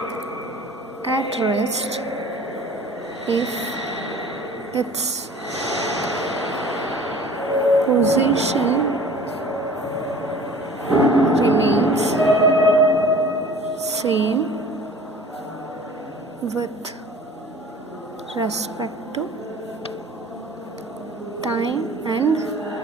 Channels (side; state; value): both; normal; correlation 0.46